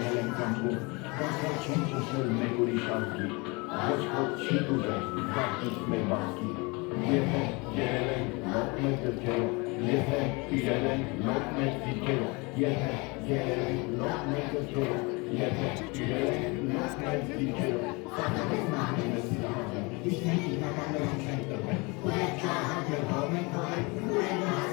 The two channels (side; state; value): right; quieter; 27.6 dB